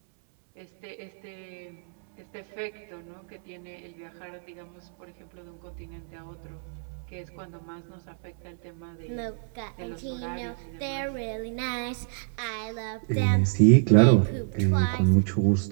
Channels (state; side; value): silent; left; 59 dB below the other